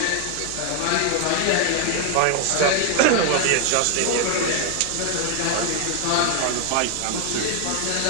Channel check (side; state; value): both; different; correlation 0.00